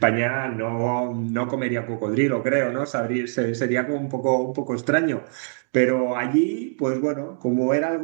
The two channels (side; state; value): left; silent; digital silence